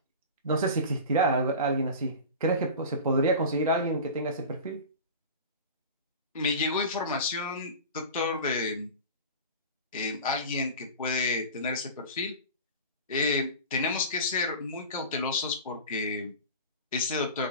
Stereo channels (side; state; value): both; inverted; correlation -0.32